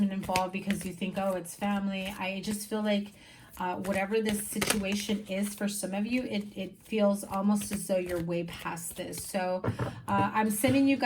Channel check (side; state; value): both; identical; correlation 1.00